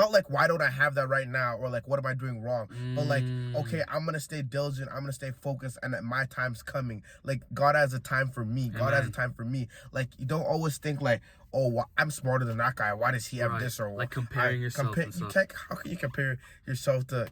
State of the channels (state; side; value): identical; both; correlation 1.00